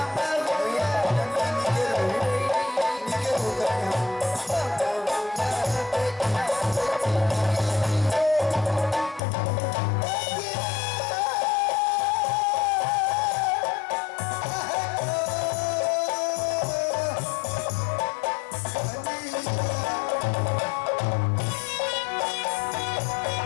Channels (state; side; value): drops out; right; at 9.2 s